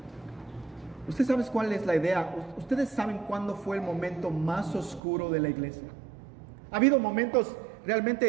¿Usted sabe cuál es la idea? ¿Ustedes saben cuándo fue el momento más oscuro de la iglesia? Ha habido momentos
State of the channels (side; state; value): left; drops out; at 5.0 s